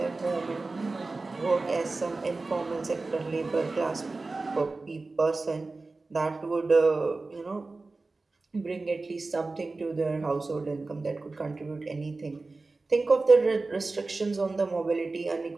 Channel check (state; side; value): quieter; left; 3.5 dB